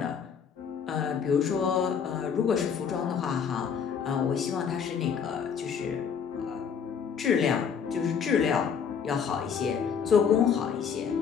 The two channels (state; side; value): quieter; right; 7.0 dB